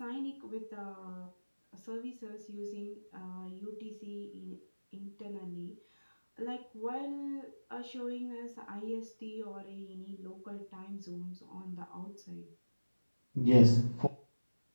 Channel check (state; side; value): inverted; both; correlation -1.00